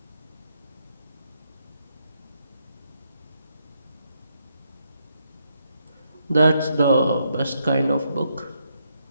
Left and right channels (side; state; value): both; inverted; correlation -0.78